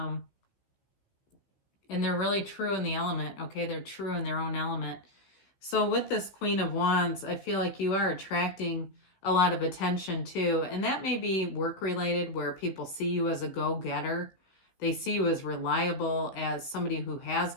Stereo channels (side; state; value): right; late; 15 ms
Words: they're really true in the element, okay? They're true in their own element. So with this Queen of Wands, I feel like you are attracting a lot of attention too. And that may be work-related, where people see you as a go-getter. They see you as reliable, as somebody who has